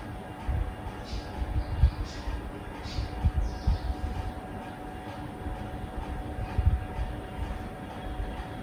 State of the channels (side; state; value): both; identical; correlation 1.00